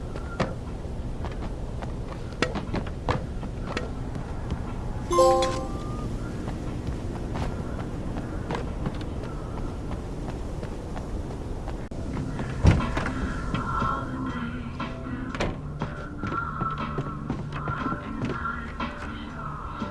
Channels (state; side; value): identical; both; correlation 1.00